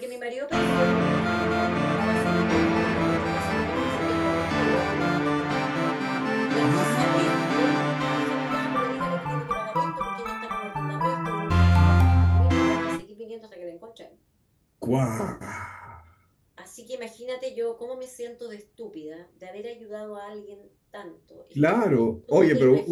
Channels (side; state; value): both; identical; correlation 1.00